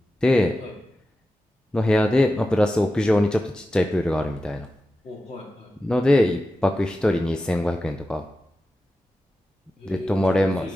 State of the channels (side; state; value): both; normal; correlation 0.93